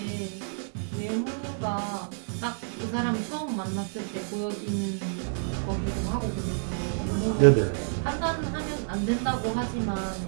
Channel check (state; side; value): silent; left; 57 dB below the other